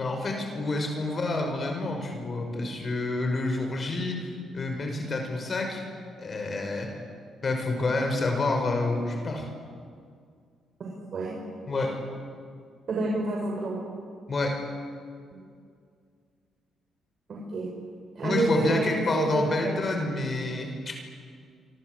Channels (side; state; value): both; normal; correlation 0.80